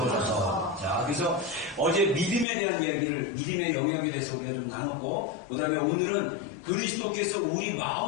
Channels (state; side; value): drops out; right; at 2.5 s